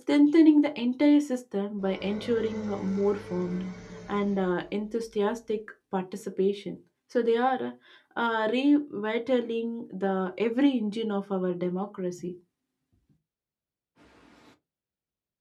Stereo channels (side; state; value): both; identical; correlation 1.00